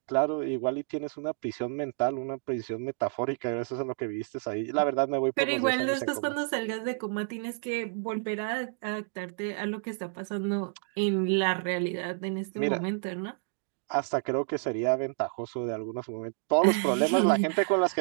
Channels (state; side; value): silent; left; digital silence